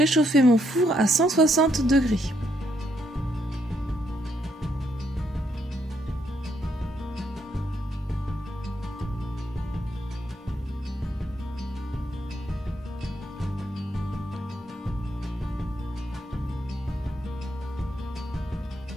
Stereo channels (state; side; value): normal; both; correlation 0.75